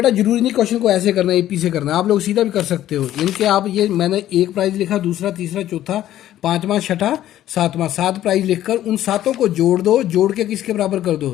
जरूरी नहीं क्वेश्चन को ऐसे करना है, एपी से करना है, आप लोग सीधा भी कर सकते हो। इनके आप ये मैंने एक प्राइज लिखा, दूसरा तीसरा चौथा पांचवा छठा सातवां, 7 प्राइज लिखकर उन सातों को जोड़ दो, जोड़ के किसके बराबर कर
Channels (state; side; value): quieter; right; 12.8 dB